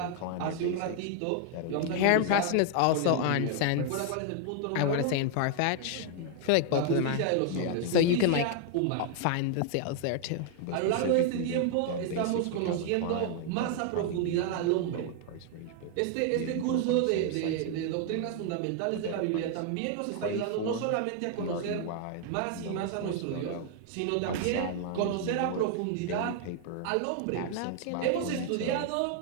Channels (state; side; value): different; both; correlation 0.00